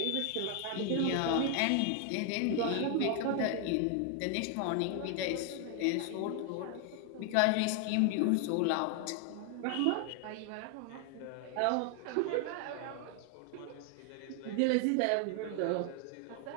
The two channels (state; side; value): different; both; correlation 0.00